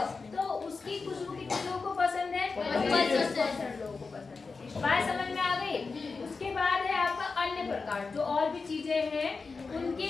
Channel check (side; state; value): right; quieter; 4.4 dB